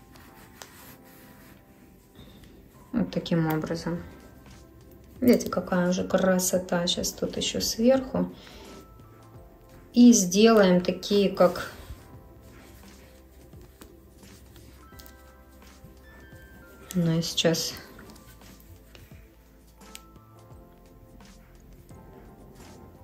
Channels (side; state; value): both; identical; correlation 1.00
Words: Вот таким образом. Видите, какая уже красота. Сейчас тут еще сверху. И сделаем такие, как... Ну и сейчас...